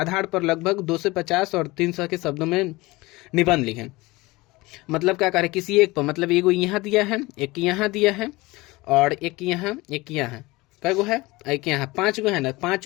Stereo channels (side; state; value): right; quieter; 21.6 dB